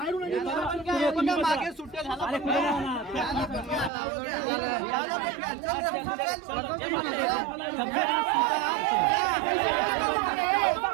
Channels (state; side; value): drops out; left; at 3.9 s